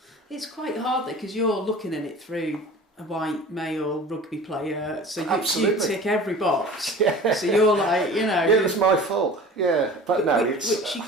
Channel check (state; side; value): normal; both; correlation 0.41